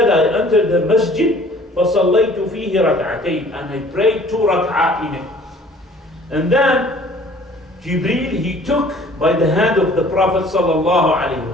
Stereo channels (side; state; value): both; normal; correlation 0.52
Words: I entered the masjid, فصليت فيه ركعتين, and I prayed 2 rak'ah in it. And then Jibreel he took by the hand of the Prophet sallallahu alaihi